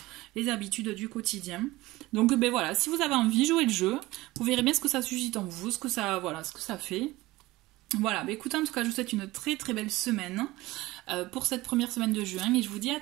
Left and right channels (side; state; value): left; quieter; 19.1 dB